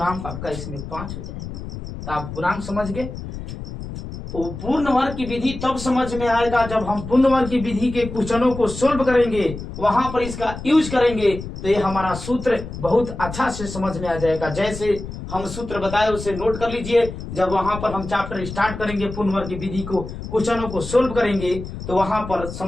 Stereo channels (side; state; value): left; noise; rumble, 9 dB below the sound